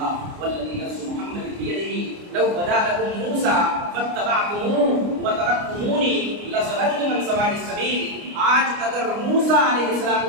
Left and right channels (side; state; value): left; late; 29 ms